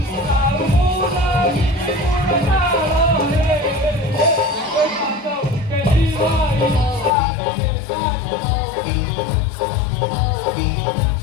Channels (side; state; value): right; drops out; at 7.1 s